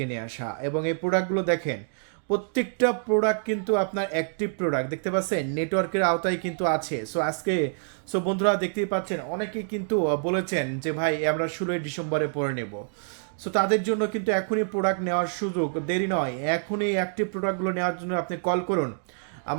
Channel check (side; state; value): left; silent; digital silence